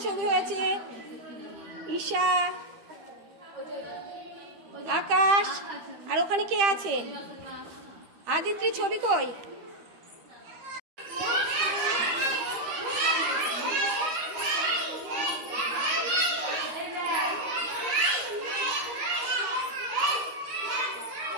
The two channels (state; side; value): late; left; 13 ms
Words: ছবি হয়েছে। ঈশা, আকাশ, আর ওখানে কে আছে? আদিত্রির ছবি কই?